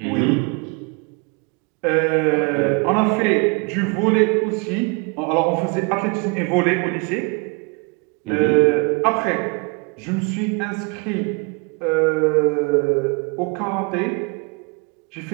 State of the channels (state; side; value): quieter; left; 31.9 dB